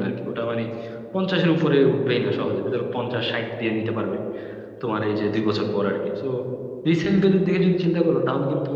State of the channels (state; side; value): identical; both; correlation 1.00